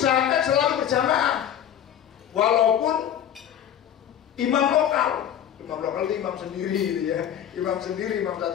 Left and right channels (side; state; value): right; quieter; 10.0 dB